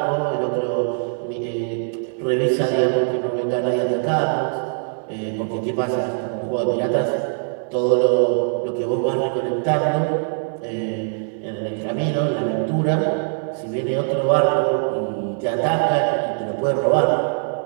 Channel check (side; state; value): left; silent; digital silence